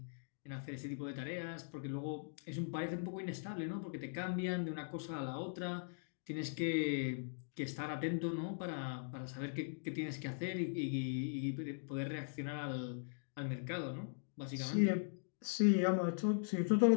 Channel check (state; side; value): silent; right; digital silence